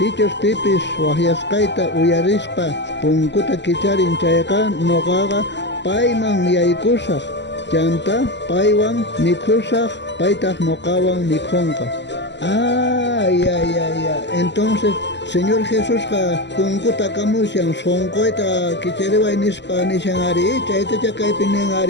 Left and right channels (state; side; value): late; right; 0.51 ms